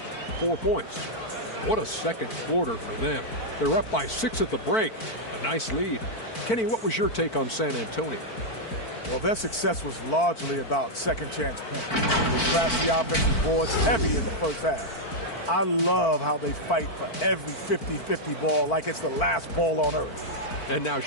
4 points. What a second quarter for them. They're up by 6 at the break. A nice lead. Kenny, what was your take on San Antonio? Well, their success was largely about second chance points. They crashed the offensive boards heavy in the first half. I love how they fight for every 50-50 ball like it's the last ball on earth. And now,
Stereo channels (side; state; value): right; late; 4.5 ms